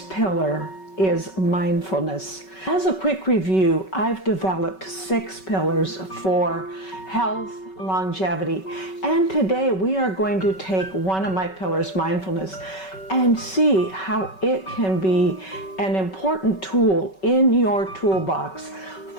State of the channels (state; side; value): late; right; 5.3 ms